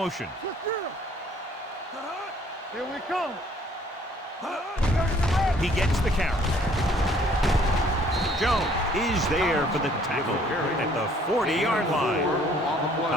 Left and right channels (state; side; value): normal; both; correlation 0.60